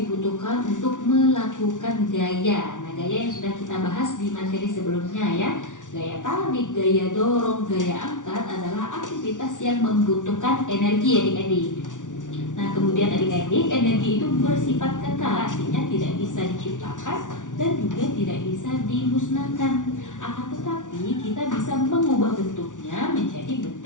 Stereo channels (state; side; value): late; right; 0.87 ms